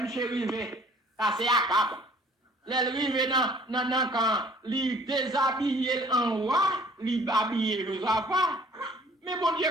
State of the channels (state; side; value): normal; both; correlation 0.54